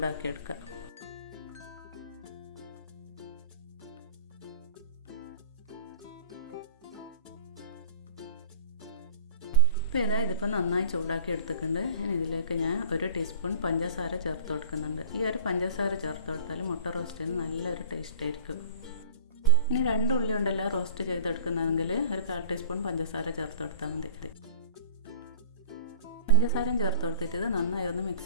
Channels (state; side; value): inverted; both; correlation -0.42